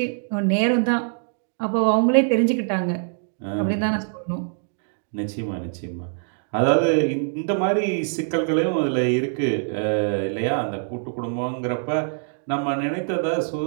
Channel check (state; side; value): silent; left; digital silence